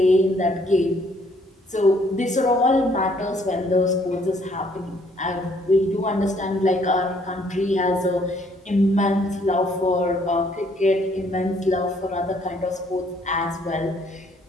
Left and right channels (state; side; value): normal; both; correlation 0.65